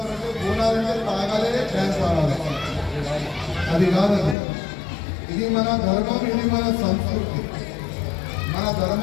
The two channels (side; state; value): right; drops out; at 4.4 s